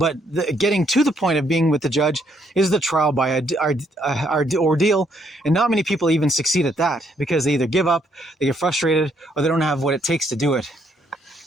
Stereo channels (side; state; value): both; normal; correlation 0.71